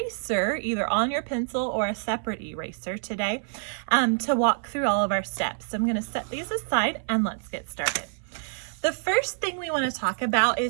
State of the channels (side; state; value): left; silent; 57 dB below the other